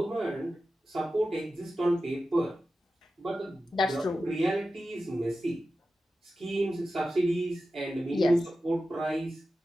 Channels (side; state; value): both; normal; correlation 0.93